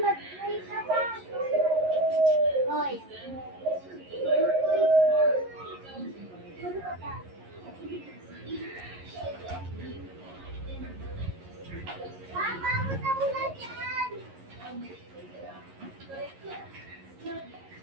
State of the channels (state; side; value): late; left; 11 ms